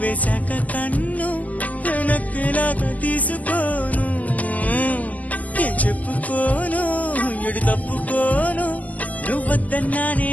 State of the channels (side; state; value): right; late; 0.073 ms